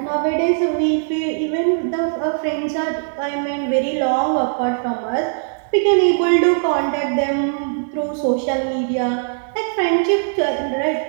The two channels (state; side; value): silent; left; digital silence